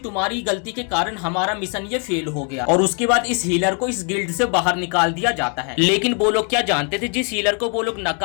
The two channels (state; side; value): quieter; right; 39.4 dB